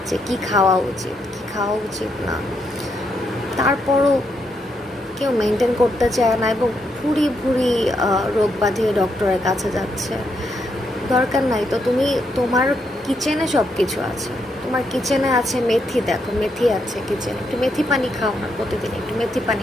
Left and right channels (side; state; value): both; normal; correlation 0.79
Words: যে কি খাওয়া উচিত কি খাওয়া উচিত না। তারপরও কেউ মেনটেন করতে চায় না এবং ভুরি ভুরি রোগ বাঁধিয়ে ডক্টরের কাছে যাচ্ছে। দরকার নাই তো। তুমি তোমার কিচেনে সব কিছু আছে, তোমার কিচেনে আছে মেথি, দেখো মেথি আছে কিচেনে, একটু মেথি পানি খাও না প্রতিদিন, একটু মেথি